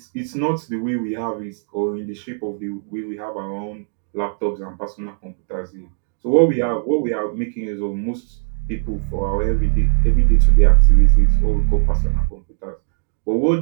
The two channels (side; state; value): left; silent; digital silence